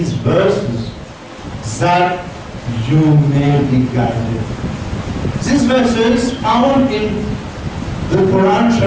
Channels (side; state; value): both; identical; correlation 1.00